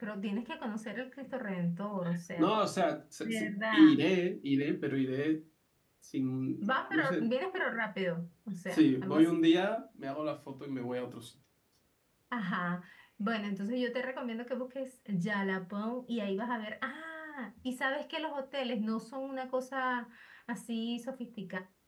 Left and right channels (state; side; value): identical; both; correlation 1.00